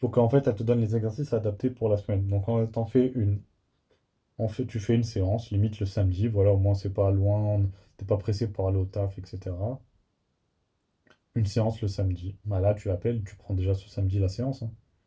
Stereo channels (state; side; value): identical; both; correlation 1.00